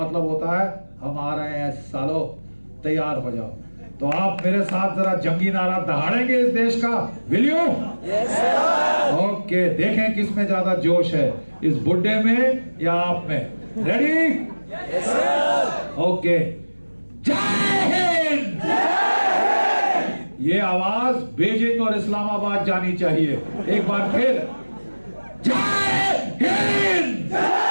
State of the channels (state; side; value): inverted; both; correlation -1.00